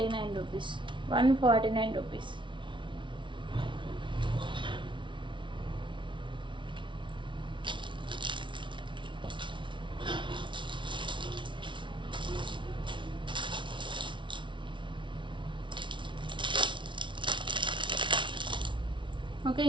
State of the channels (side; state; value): left; late; 0.24 ms